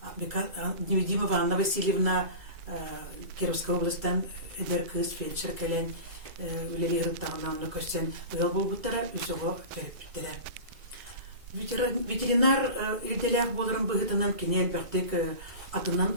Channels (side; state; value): left; late; 2.3 ms